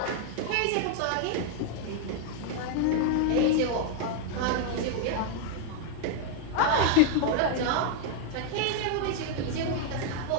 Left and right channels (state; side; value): different; both; correlation 0.00